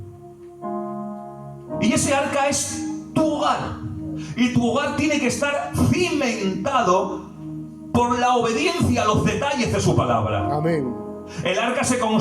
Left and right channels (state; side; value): identical; both; correlation 1.00